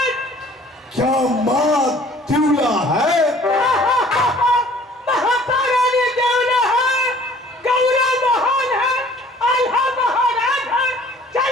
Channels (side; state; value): both; normal; correlation 0.53